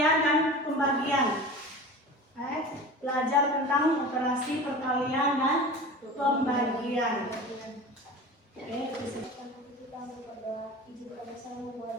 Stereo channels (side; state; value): both; normal; correlation 0.35